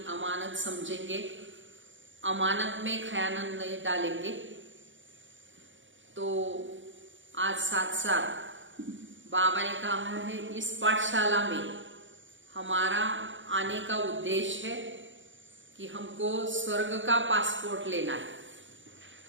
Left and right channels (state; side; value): late; left; 0.56 ms